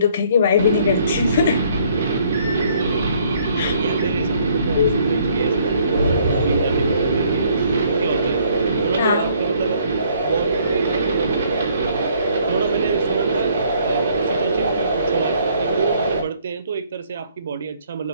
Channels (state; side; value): inverted; both; correlation -0.63